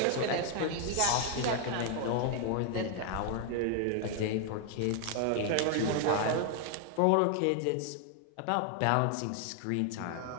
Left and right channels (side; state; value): both; different; correlation 0.00